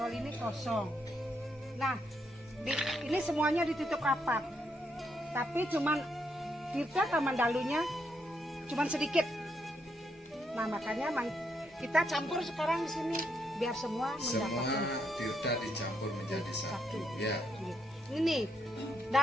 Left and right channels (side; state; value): both; normal; correlation 0.78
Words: ini kosong. Nah, ini semuanya ditutup rapat. Tapi cuman Tirta Kamandalunya cuman sedikit. Nah, makanya kita campur sekarang di sini biar semua mendapatkan. Semua tirta dicampur menjadi satu. Ya. Ini